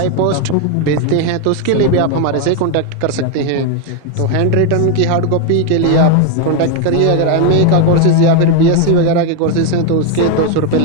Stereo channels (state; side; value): different; both; correlation 0.01